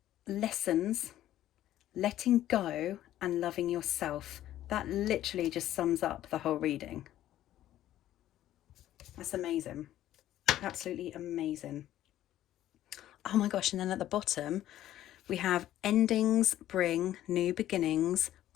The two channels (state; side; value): quieter; right; 13.0 dB